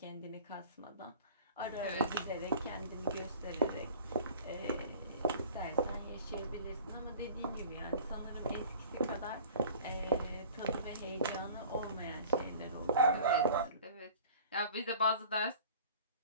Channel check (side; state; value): both; inverted; correlation -0.44